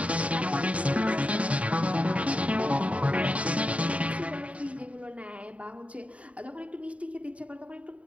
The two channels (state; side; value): late; left; 0.066 ms